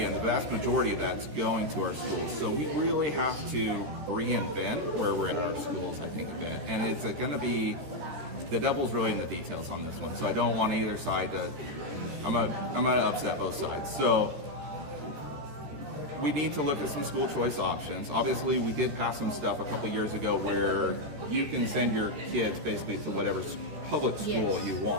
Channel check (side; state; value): left; late; 14 ms